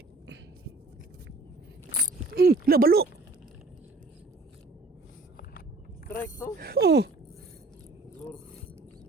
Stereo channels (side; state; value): left; quieter; 3.2 dB